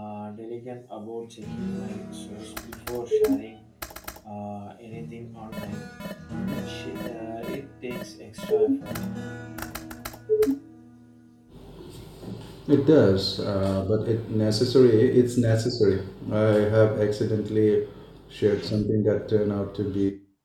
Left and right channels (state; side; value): identical; both; correlation 1.00